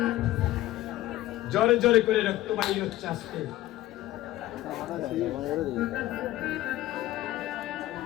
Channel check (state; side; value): quieter; right; 15.5 dB